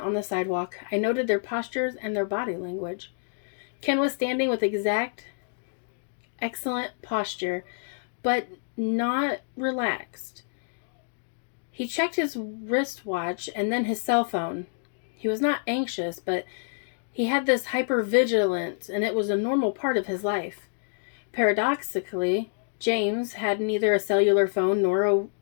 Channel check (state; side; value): silent; right; digital silence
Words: the sidewalk, I noted their postures and their body language. Ken was standing with excellent posture, but not relaxed. He checked his wristwatch and then his cell phone. He was not anxious, but he had this hypervigilance, and it was a normal part of his life. Paradoxically, James had neither a cellular phone nor a